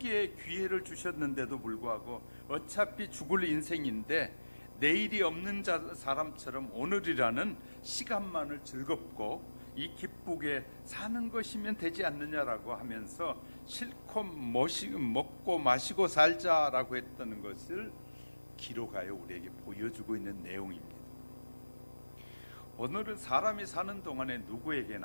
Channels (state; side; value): inverted; both; correlation -1.00